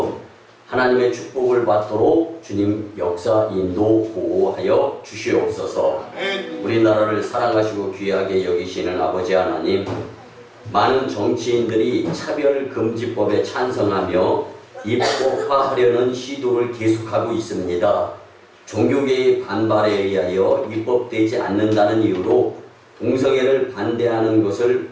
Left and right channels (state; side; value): identical; both; correlation 1.00